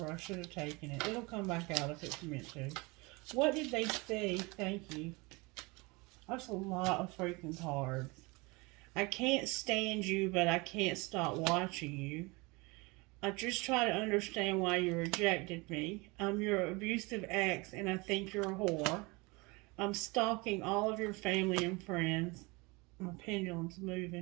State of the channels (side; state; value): left; quieter; 25.9 dB